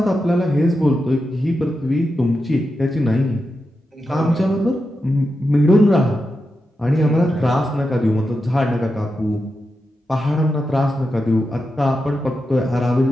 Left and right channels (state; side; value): normal; both; correlation 0.88